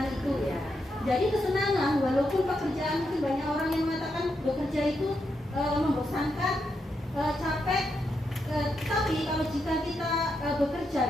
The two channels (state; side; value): normal; both; correlation 0.83